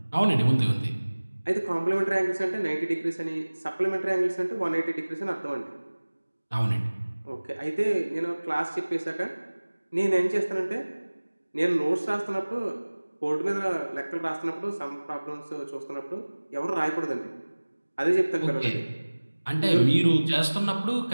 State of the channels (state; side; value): inverted; both; correlation -1.00